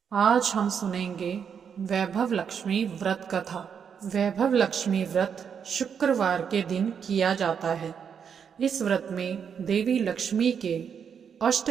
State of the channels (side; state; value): left; quieter; 7.2 dB